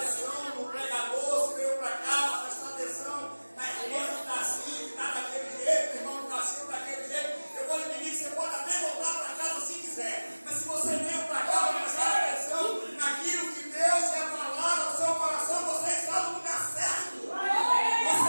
no pregador, se veio para cá, para prestar atenção na irmã que está assim, que está daquele jeito, o irmão que está assim, daquele jeito, eu vou lhe pedir que você pode até voltar para casa se quiser. Mas se você veio para cá para prestar atenção naquilo que Deus quer falar no seu coração, você está no lugar certo.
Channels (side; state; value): both; inverted; correlation -1.00